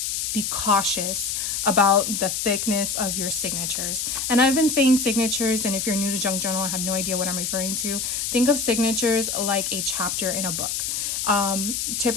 be cautious about the thickness of your signatures. And I've been saying signatures, and if you're new to junk journal, I have no idea what I'm referring to. Think of signatures like a chapter in a book.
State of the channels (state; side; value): noise; left; hiss, 1 dB below the sound